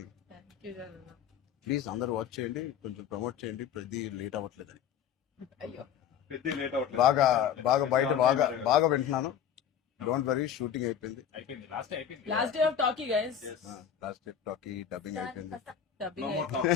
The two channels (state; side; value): quieter; right; 8.7 dB